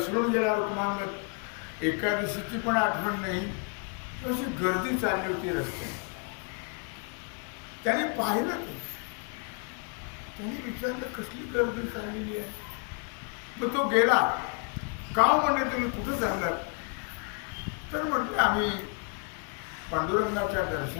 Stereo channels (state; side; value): quieter; right; 34.9 dB